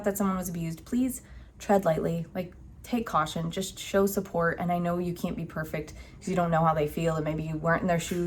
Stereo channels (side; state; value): both; identical; correlation 1.00